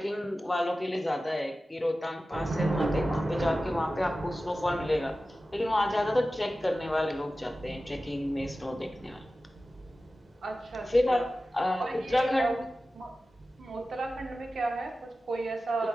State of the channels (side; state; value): both; normal; correlation 0.95